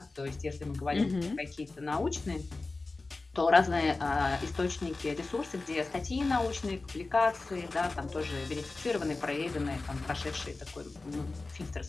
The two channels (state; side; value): quieter; right; 3.5 dB